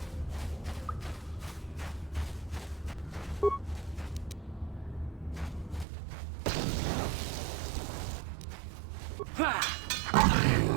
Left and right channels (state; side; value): drops out; left; at 5.9 s